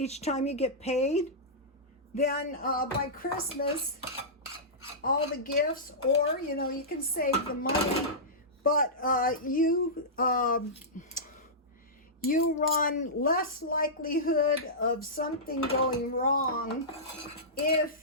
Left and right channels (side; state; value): both; normal; correlation -0.15